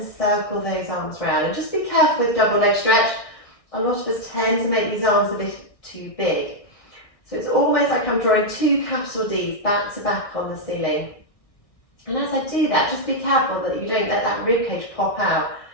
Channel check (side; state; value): right; late; 1.6 ms